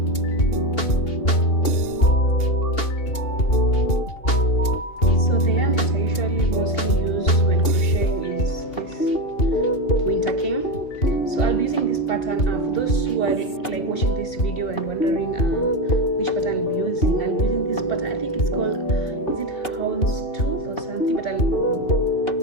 For those who are like watching this video and wondering which pattern I'll be using this pattern. I think it's called, is it houndstooth or something, but I'll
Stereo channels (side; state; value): right; late; 2.8 ms